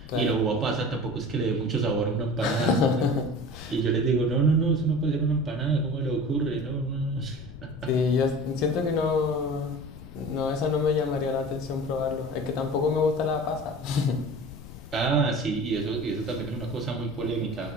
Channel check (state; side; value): noise; left; rumble, 16 dB below the sound